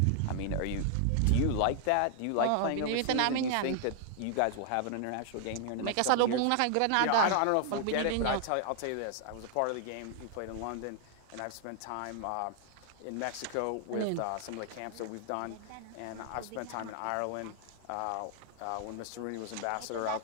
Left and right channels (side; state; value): both; different; correlation 0.00